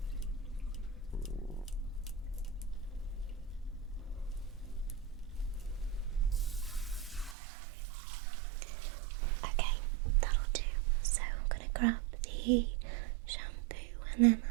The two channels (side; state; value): left; drops out; at 7.4 s